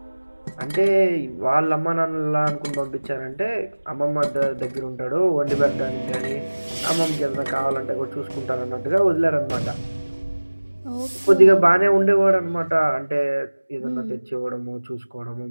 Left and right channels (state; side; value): inverted; both; correlation -1.00